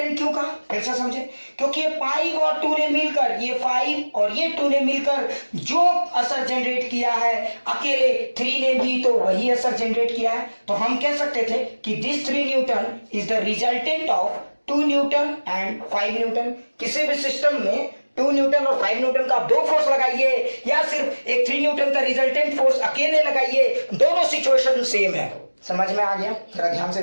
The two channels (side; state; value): both; inverted; correlation -1.00